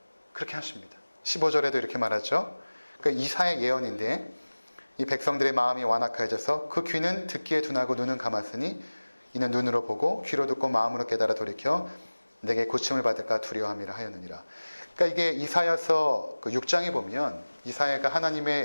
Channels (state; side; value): inverted; both; correlation -1.00